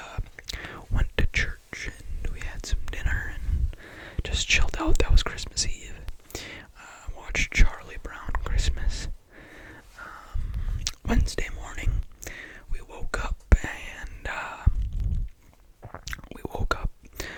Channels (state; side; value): identical; both; correlation 1.00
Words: went to church, and we had some dinner and just chilled out. That was Christmas Eve. Watched Charlie Brown Christmas. Wednesday morning, we woke up, and